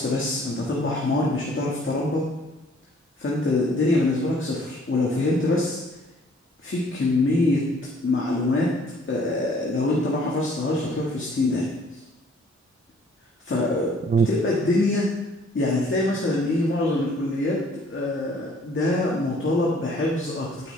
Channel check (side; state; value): both; normal; correlation 0.58